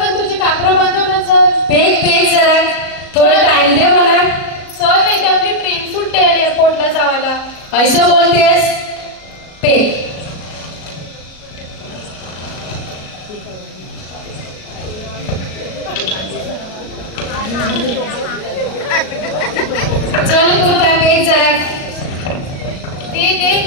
तुझे कापडं बांधव ना. चल पेक जरा थोडा टाइम दे मला. चल नाही तर आपली ट्रेन सुटते एअरपोर्टला जावाला. ऐसं बोलतेस? पेक चल पुता पेक जरा दे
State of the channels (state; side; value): late; right; 37 ms